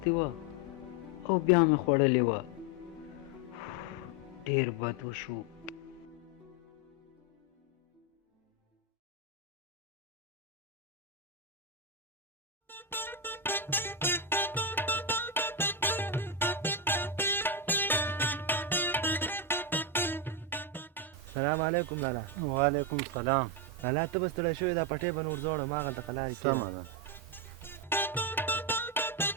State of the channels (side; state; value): both; normal; correlation 0.08